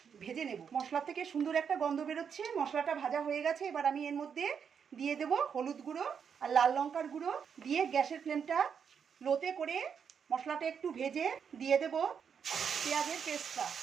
ভেজে নেব। মশলা থেকে সুন্দর একটা গন্ধ বেরোচ্ছে। মশলাটা ভাজা হয়ে গেছে। এবার আমি এর মধ্যে দিয়ে দেব হলুদ গুঁড়ো আর লাল লঙ্কার গুঁড়ো দিয়ে গ্যাসের ফ্লেমটা লোতে করে মশলাটা একটু ভেজে দিয়ে দেব পেঁয়াজের পেস্টটা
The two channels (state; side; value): quieter; left; 7.1 dB